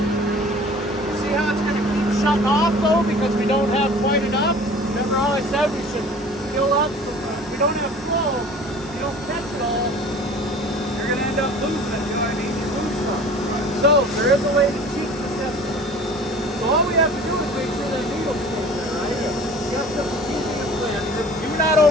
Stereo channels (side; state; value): both; normal; correlation 0.45